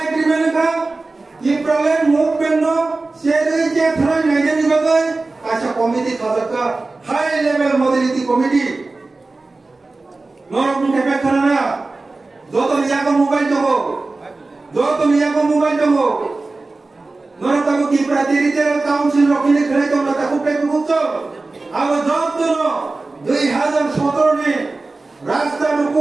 एग्रीमेंट का ये प्रॉब्लम मूवमेंट नो शेरे जे थरा नाइजे निबगे कैसा कमिटी खासका हाई लेवल मोबिलिटी कमिटी नोर मुके पे करना जो तो लिया को मोबाइल दो नोर ताको की प्रातिनिधिक काउंसिल रखिले खरे तो ताकुते बुझो अब जब तो 2017 में रास्ता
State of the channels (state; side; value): quieter; left; 3.4 dB